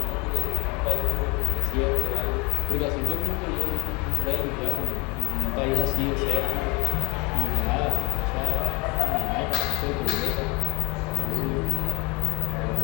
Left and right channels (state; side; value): quieter; right; 26.6 dB